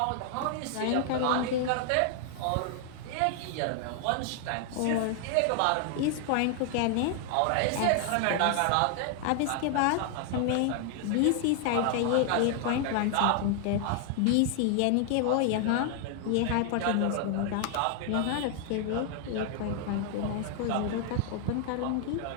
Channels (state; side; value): different; both; correlation 0.00